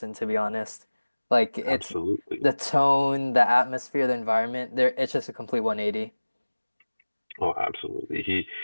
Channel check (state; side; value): inverted; both; correlation -1.00